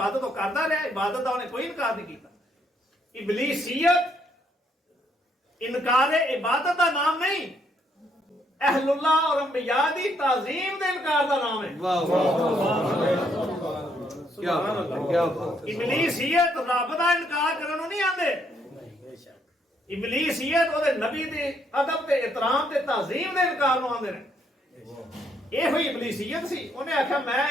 ਉਹ ਕਰਦਾ ਰਿਹਾ, ਇਬਾਦਤ ਦਾ ਉਹਨੇ ਕੋਈ ਇਨਕਾਰ ਨਹੀਂ ਕੀਤਾ। ਇਬਲੀਸੀਅਤ ਇਨਕਾਰ ਇਬਾਦਤ ਦਾ ਨਾਮ ਨਹੀਂ, ਅਹਲੁल्लाह और अंबिया ਦੀ ਤਾਜ਼ੀਮ ਦੇ ਇਨਕਾਰ ਦਾ ਨਾਮ ਹੈ। ਵਾਹ ਵਾਹ ਕੀ ਬਾਤ ਹੈ, ਕੀ ਬਾਤ। ਇਬਲੀਸੀਅਤ ਰੱਬ ਦਾ ਇਨਕਾਰ ਕਰਨ ਨੂੰ ਨਹੀਂ ਆਂਦੇ। ਇਬਲੀਸੀਅਤ ਉਹਦੇ ਨਬੀ ਦੇ ਅਦਬ ਤੇ ਇਤਰਾਮ ਤੇ ਤਾਜ਼ੀਮ ਦੇ ਇਨਕਾਰ ਨੂੰ ਆਂਦੇ ਨੇ। ਇਹੋ ਹੀ ਇਬਲੀਸੀਅਤ ਸੀ। ਉਹਨੇ ਆਖਿਆ ਮੈਂ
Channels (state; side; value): normal; both; correlation 0.72